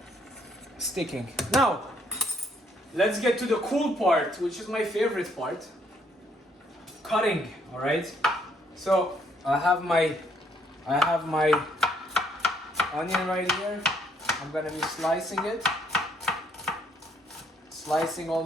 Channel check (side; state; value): both; normal; correlation 0.69